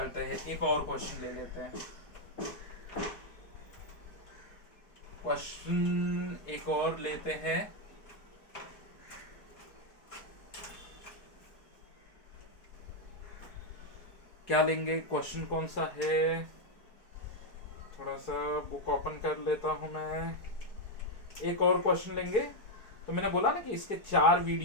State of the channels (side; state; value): right; late; 4.7 ms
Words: हैं, एक और क्वेश्चन ले लेते हैं, क्वेश्चन एक और लेते हैं। क्या लेंगे, क्वेश्चन कौन सा है, थोड़ा सा बुक ओपन कर लेता हूं मैं। एक और क्वेश्चन लेंगे, तो मैंने बोला ना कि इसके 4